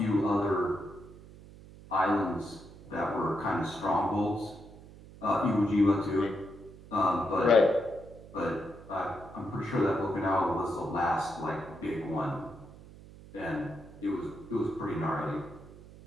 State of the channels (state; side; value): noise; right; hum, 19 dB below the sound